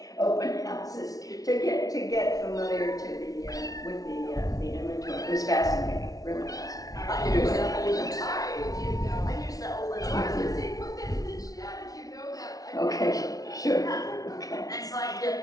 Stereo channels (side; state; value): right; late; 0.18 ms